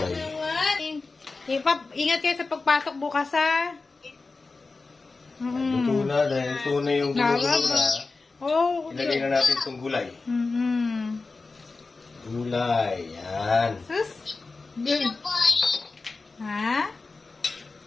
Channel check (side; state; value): right; quieter; 3.9 dB